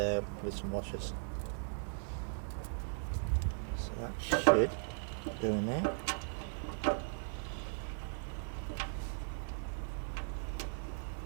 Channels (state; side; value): silent; left; 52 dB below the other